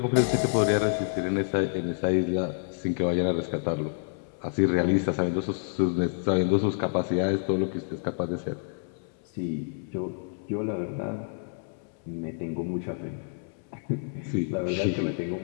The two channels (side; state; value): right; silent; 59 dB below the other